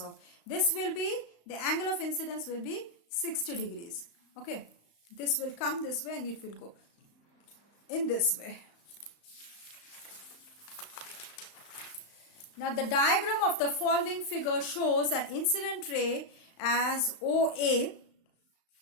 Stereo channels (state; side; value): late; right; 35 ms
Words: This will be, the angle of incidence will be 60 degrees. Okay, this will come this way and it will go in this way. Now the diagram of the following figure shows an incident ray as OA